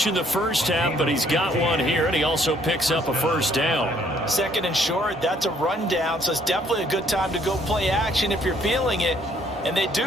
in the first half, but he's got one here, and he also picks up a first down. 2nd and short, that's a rundown, so it's definitely a good time to go play action if you're feeling it. And they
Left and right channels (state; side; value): normal; both; correlation 0.65